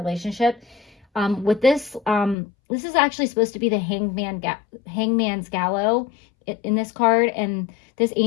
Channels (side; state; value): right; drops out; at 2.4 s